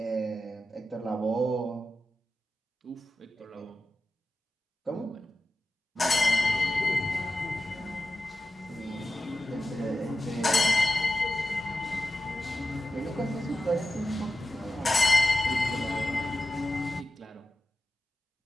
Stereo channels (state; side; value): normal; both; correlation 0.92